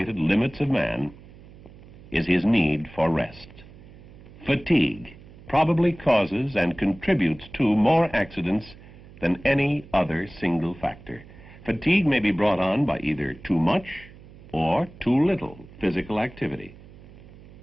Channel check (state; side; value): noise; right; hum, 20 dB below the sound